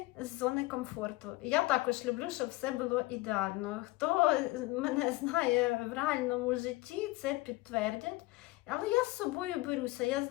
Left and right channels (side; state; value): right; quieter; 20.9 dB